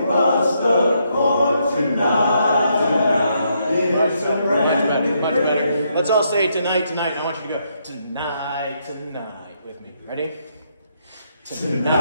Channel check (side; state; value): both; inverted; correlation -0.76